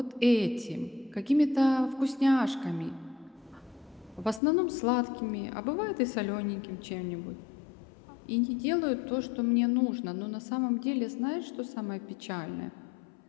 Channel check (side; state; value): right; drops out; at 4.4 s